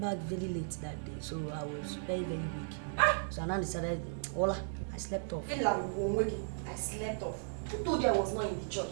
very late that day, so I was very, very weak. So I now decided, Ola, I slept off. I slept off. Who told you I was not in the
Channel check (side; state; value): left; silent; digital silence